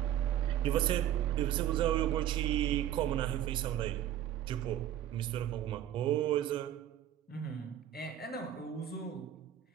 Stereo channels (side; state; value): left; quieter; 11.5 dB